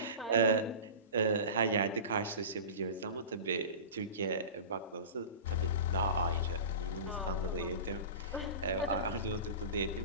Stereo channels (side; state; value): both; inverted; correlation -0.31